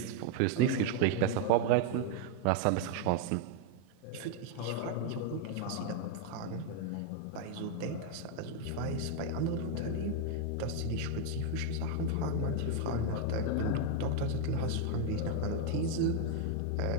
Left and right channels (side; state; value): both; different; correlation 0.00